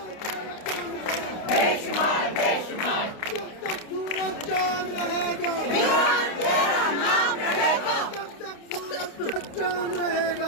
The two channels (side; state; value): right; late; 29 ms